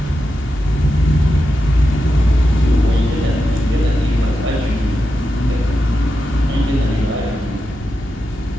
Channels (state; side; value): normal; both; correlation 0.88